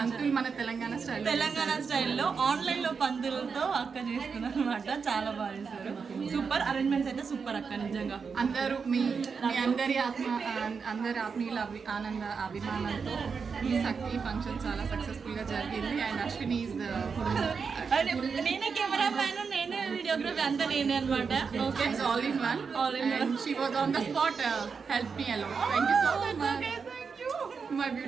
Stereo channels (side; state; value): left; quieter; 5.6 dB